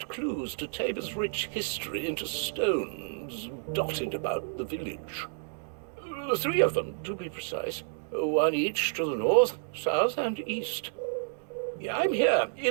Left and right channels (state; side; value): silent; left; digital silence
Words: clues to Tabor's rich history into stones dotted about the village. 3 of them, to be precise. 1 each to the north, south, and east. I'm here